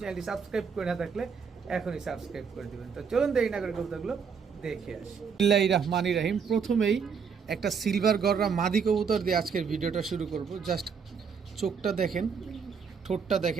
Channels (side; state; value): left; quieter; 6.2 dB